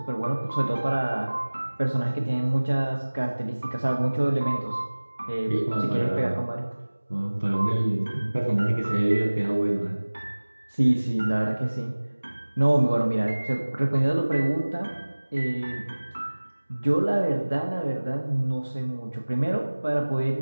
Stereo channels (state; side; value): inverted; both; correlation -1.00